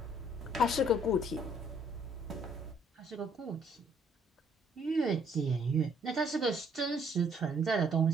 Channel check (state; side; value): normal; both; correlation 0.64